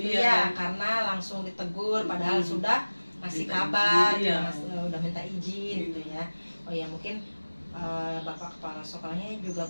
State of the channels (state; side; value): inverted; both; correlation -1.00